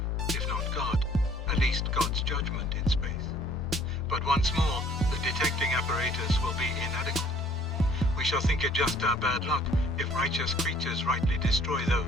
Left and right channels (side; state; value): both; normal; correlation 0.57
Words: if not God, at least God's judgment in space. But once more, the detecting apparatus will be inadequate. We shall think it just our bad luck if righteous creatures rightly destroy